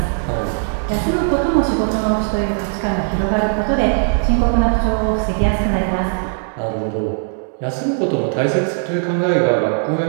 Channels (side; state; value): left; silent; 65 dB below the other